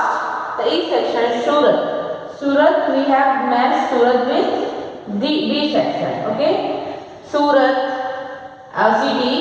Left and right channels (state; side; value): identical; both; correlation 1.00